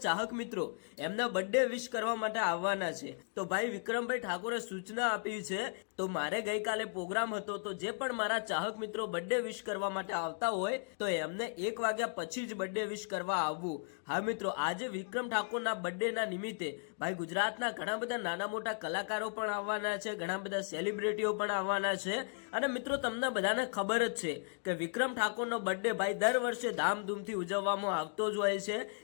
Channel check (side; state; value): right; silent; 54 dB below the other